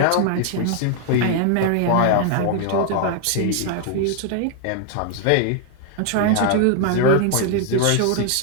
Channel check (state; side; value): different; both; correlation 0.00